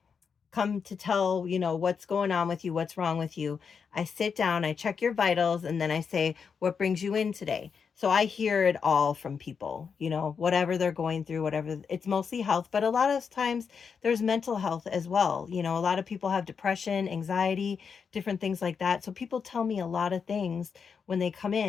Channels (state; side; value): quieter; right; 6.1 dB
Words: come to tell, what's going on with you, what's wrong with you. I sit down, I check your vitals, and then I say, what brings you in today? So I hear it all from people, whatever they're going through, whatever. It's mostly health, but a lot of times there's mental health as well. A lot of people have depression, anxiety, different things like that. So people tell me a lot of things when they come